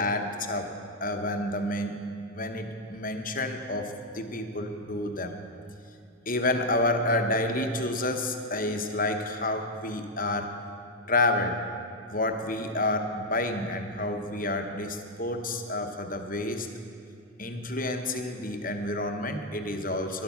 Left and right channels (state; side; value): normal; both; correlation 0.01